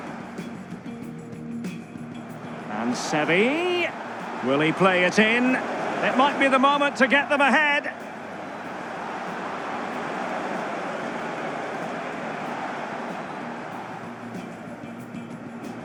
And Seri, will he play it in? It might be the moment to get them ahead.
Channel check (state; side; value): identical; both; correlation 1.00